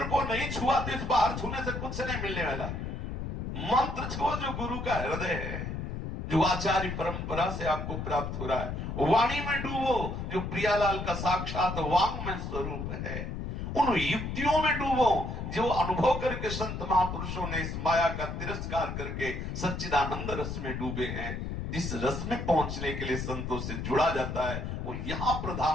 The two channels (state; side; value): noise; left; rumble, 5 dB below the sound